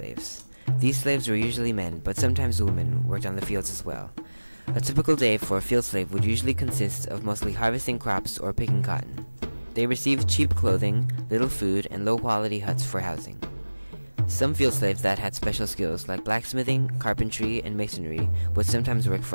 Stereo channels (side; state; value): both; inverted; correlation -1.00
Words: These slaves were usually men, but sometimes women worked on the fields as well. A typical day for a field slave would usually consist of mostly harvesting crops or picking cotton. They received cheap clothing, little food, and low-quality huts for housing. Some field slaves that had special skills like blacksmithing, carpentry, and masonry would sometimes work